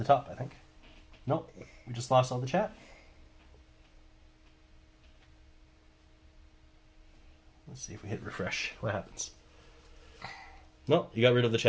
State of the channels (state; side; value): identical; both; correlation 1.00